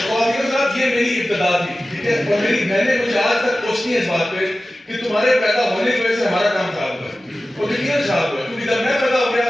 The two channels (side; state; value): both; normal; correlation 0.95